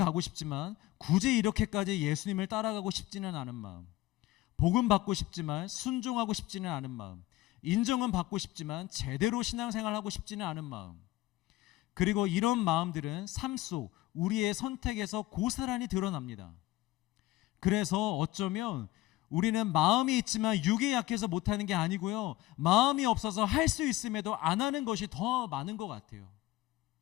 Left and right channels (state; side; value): quieter; right; 17.3 dB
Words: 싶지만 굳이 이렇게까지 예수님을 따라가고 싶지는 않은 마음, 복음 받고 싶지만 순종하고 싶지는 않은 마음, 인정은 받고 싶지만 제대로 신앙생활하고 싶지는 않은 마음, 그리고 이런 마음들은 삶 속 우리의 선택에서 고스란히 드러납니다. 그래서 어쩌면 우리는 마음이 있지만 육이 약해서 못하는 게 아니고요, 마음이 없어서 할 수 있음에도 안 하는 것이 더 많은 것 같아요.